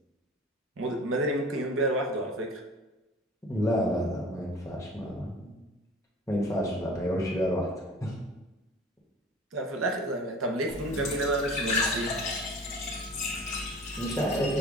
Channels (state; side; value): normal; both; correlation 0.42